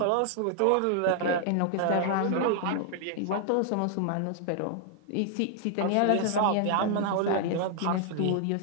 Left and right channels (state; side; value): different; both; correlation 0.00